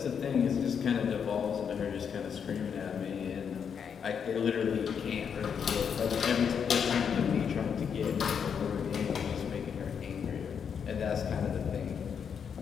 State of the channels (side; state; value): right; quieter; 7.2 dB